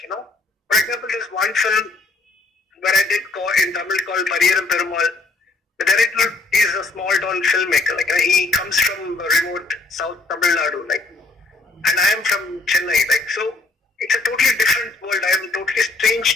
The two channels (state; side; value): quieter; right; 3.4 dB